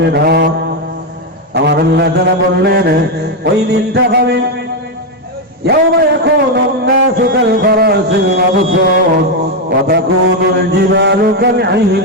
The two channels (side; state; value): both; normal; correlation 0.04